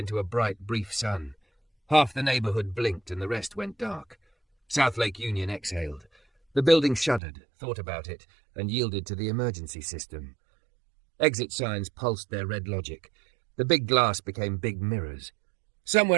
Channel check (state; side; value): drops out; left; at 7.2 s